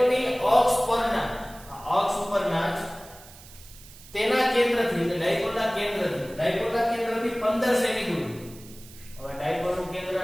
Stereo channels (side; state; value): right; noise; hiss, 20 dB below the sound